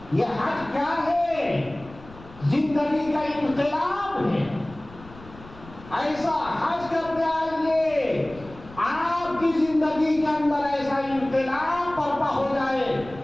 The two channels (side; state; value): left; noise; rumble, 19 dB below the sound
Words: یہ حج کیا ہے؟ زندگی کا انقلاب ہے۔ ایسا حج کرتے آئیے آپ کی زندگی کے اندر ایسا انقلاب برپا ہو جائے،